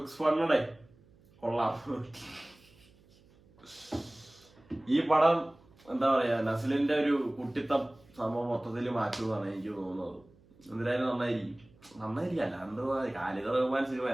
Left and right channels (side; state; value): right; noise; hum, 28 dB below the sound